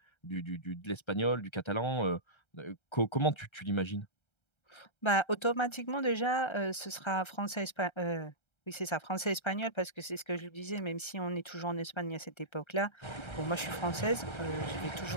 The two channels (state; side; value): late; right; 1.3 ms